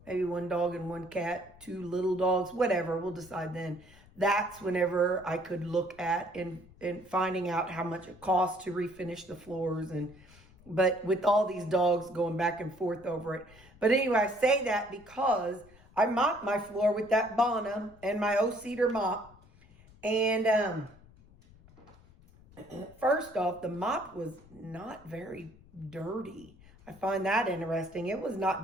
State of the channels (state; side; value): noise; left; rumble, 24 dB below the sound